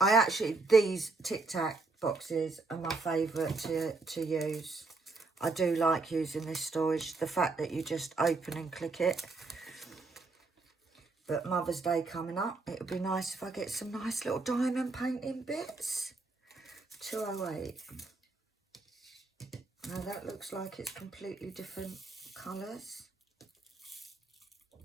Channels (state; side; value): quieter; left; 3.7 dB